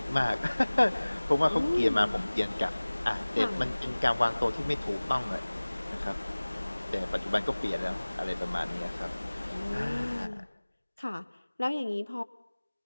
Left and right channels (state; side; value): inverted; both; correlation -1.00